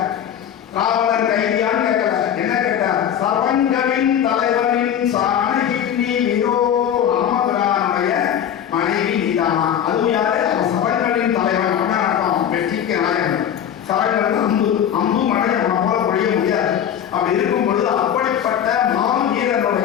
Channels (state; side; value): quieter; right; 9.4 dB